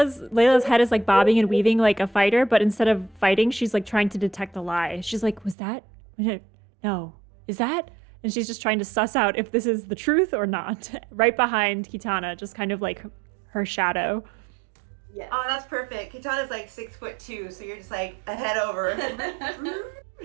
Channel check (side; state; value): left; drops out; at 5.6 s